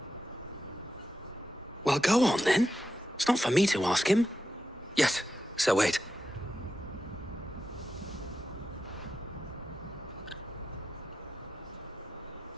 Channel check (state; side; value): normal; both; correlation 0.88